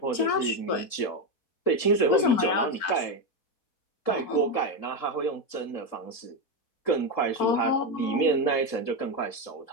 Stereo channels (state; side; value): late; right; 3.7 ms